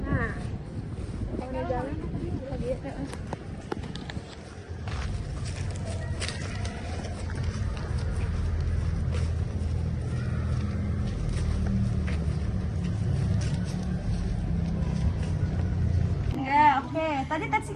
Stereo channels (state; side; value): identical; both; correlation 1.00